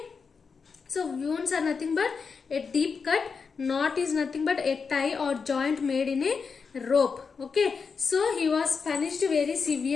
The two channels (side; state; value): right; quieter; 5.4 dB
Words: so wounds are nothing but a deep cut, knot is nothing but a tie or joint made in a rope. Okay, so he was punished very